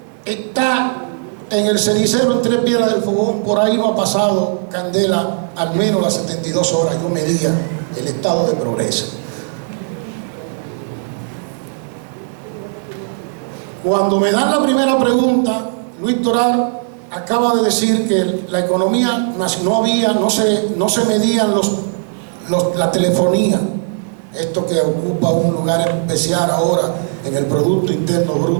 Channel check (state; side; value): silent; left; digital silence